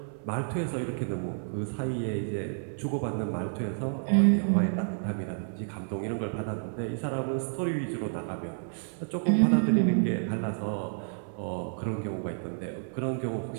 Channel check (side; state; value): left; silent; 58 dB below the other